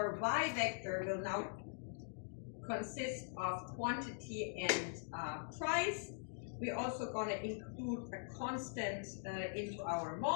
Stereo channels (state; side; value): silent; right; digital silence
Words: y vector will now consist of quantity and price. We're also going to include a constant into our